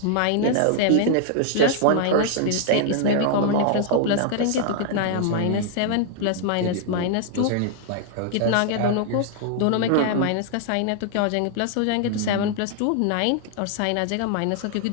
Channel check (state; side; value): different; both; correlation -0.01